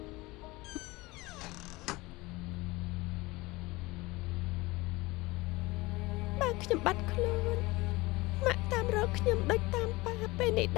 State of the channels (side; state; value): right; quieter; 21.8 dB